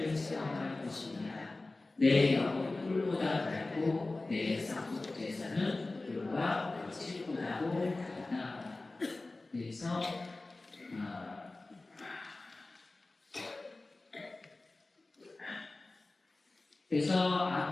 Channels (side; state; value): right; quieter; 3.2 dB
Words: 체험할 것입니다. 내 영은 꿀보다 달고 내 상속제사는 꿀과 물질보다도 달다. 그래서